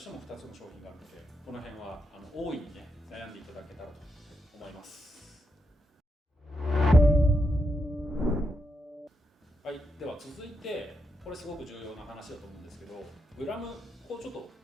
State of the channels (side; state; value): both; normal; correlation 0.82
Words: ても2つの商品があるので、この辺は大いにね悩んでいただけたらと思います。続いてこれすごく重要な話だと思うんですけど、グラムをちょっと